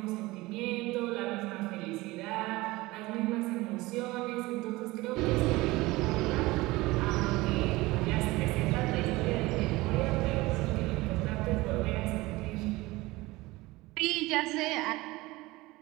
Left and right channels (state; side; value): quieter; left; 20.5 dB